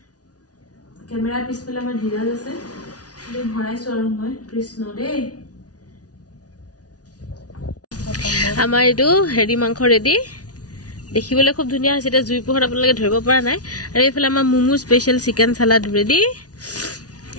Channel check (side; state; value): right; late; 0.68 ms